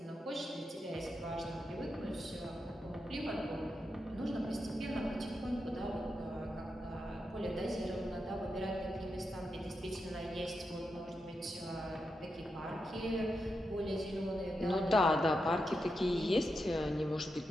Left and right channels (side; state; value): both; normal; correlation 0.87